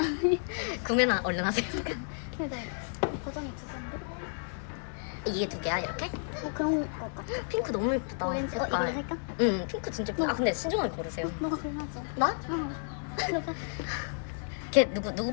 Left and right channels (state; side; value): silent; right; digital silence